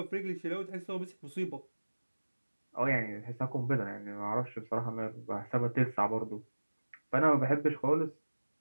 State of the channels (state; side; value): inverted; both; correlation -1.00